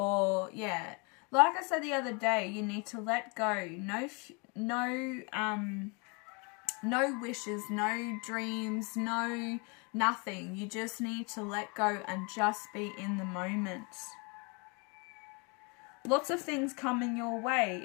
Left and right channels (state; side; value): quieter; right; 31.8 dB